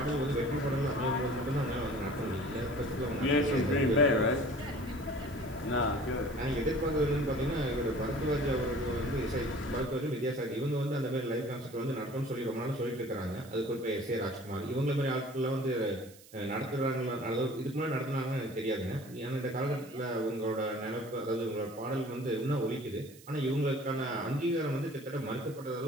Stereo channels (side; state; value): right; noise; hiss, 22 dB below the sound